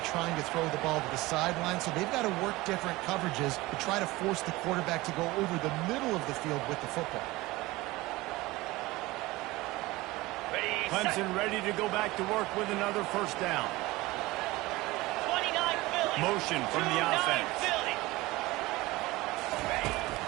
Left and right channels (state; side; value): quieter; left; 20.2 dB